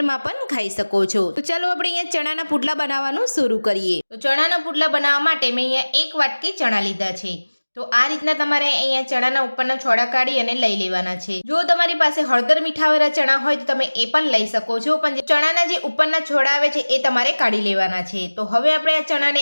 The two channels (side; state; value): both; inverted; correlation -1.00